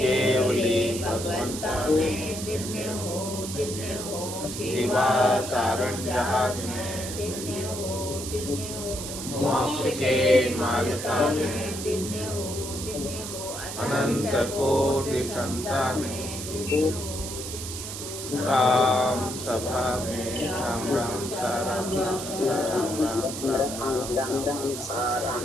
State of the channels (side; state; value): right; noise; hiss, 8 dB below the sound